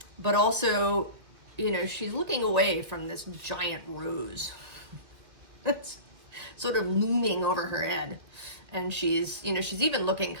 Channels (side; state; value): left; late; 1.9 ms